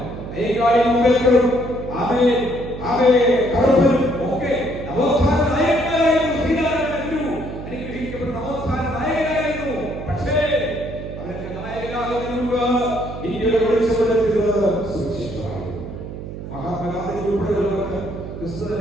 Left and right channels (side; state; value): right; noise; hum, 10 dB below the sound